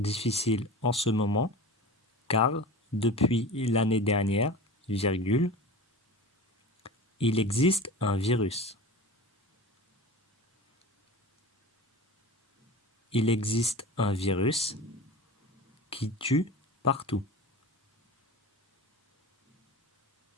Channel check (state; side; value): normal; both; correlation 0.33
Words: en ce moment car depuis l'année dernière, virgule, il existe un virus. Il existe un virus qui tue partout.